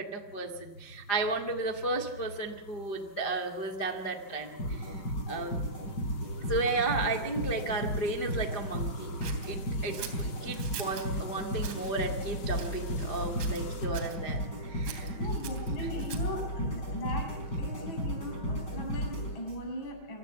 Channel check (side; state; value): right; late; 4.9 ms